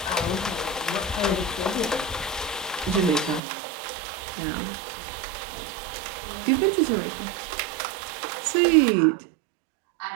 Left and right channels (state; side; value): drops out; left; at 3.4 s